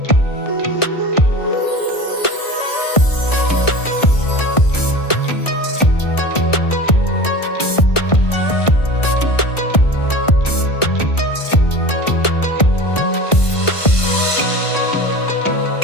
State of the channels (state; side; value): late; right; 1.5 ms